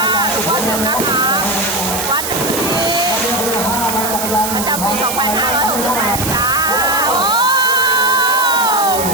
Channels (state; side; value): noise; right; hiss, 4 dB below the sound